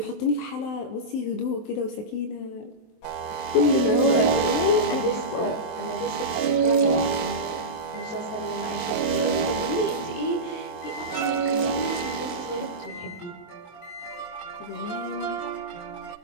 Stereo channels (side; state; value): right; late; 22 ms